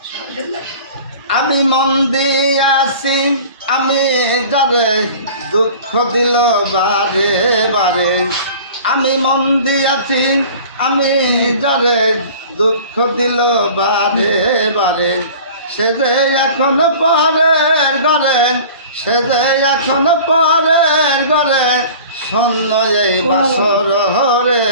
আমি মন দিয়াছি আমি যারে দুঃখ দিল বারে বারে, আমি মন দিয়াছি আমি যারে দুঃখ দিল বারে বারে, সে যে এখন পরের ঘরে, সে যে এখন পরের ঘরে, শূন্য এই বাসর হরে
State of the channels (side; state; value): both; inverted; correlation -0.43